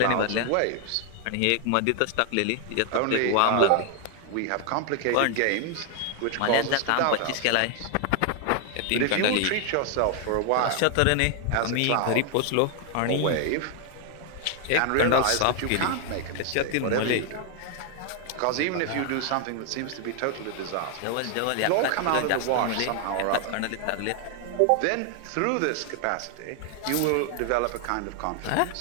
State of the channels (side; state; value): both; different; correlation 0.00